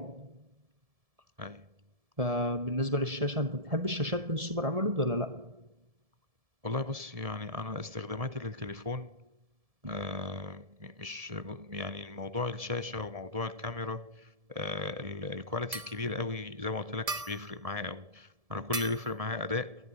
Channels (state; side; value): late; left; 1.7 ms